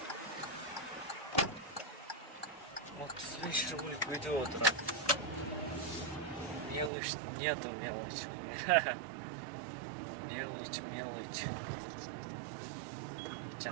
Вот с вечера будет видео утро. Мелочь, нету мелочи. Мелочь.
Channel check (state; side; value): drops out; left; at 6.9 s